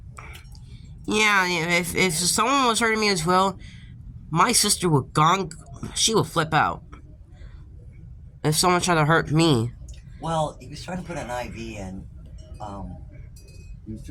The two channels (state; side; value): identical; both; correlation 1.00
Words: Yeah, if someone was hurting me as well, my sister would she would flip out. If someone tried to hurt me. Well, he was trying to put an IV in. He was